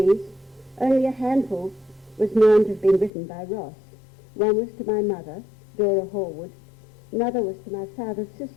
only a handful was known to have been written by Ross. One was to my mother, Dora Horwood. Another was to my father's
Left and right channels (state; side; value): drops out; right; at 3.1 s